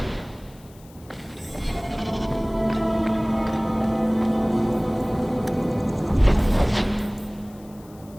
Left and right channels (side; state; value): left; noise; hiss, 26 dB below the sound